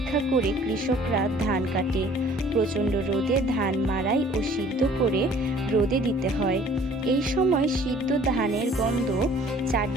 করে কৃষকরা ধান কাটে। প্রচণ্ড রোদে ধান মাড়াই ও সিদ্ধ করে রোদে দিতে হয়। এই সময় সিদ্ধ ধানের গন্ধ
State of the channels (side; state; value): both; normal; correlation 0.53